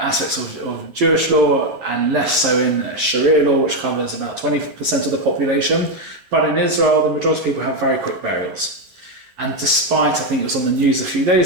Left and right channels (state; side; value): late; left; 9.0 ms